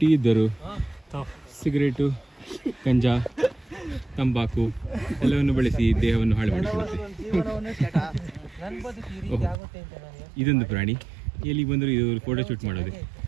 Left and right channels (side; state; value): left; drops out; at 9.6 s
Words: ಇದ್ದರು ಸಿಗರೇಟು, ಗಂಜಾ, ತಂಬಾಕು ಎಲ್ಲವನ್ನು ಬಳಸಿ ದೇಹವನ್ನು ಹಾಳು ಮಾಡಿಕೊಳ್ಳುತ್ತೆ. ಇದೊಂದು ಪ್ರಾಣಿ, ಎಲ್ಲಿ ಬಂದರೂ ಇದು ಫೋಟೋ ಶೂಟ್ ಮಾಡೋದೆ.